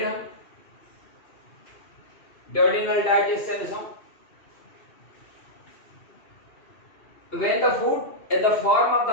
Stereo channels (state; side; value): late; right; 2.6 ms